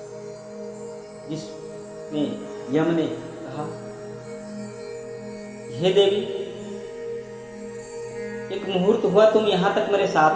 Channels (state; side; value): identical; both; correlation 1.00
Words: जिसमें यम ने कहा, हे देवी एक मुहूर्त हुआ तुम यहाँ तक मेरे